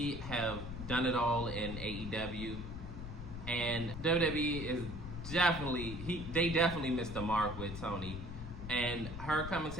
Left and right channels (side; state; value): left; noise; rumble, 9 dB below the sound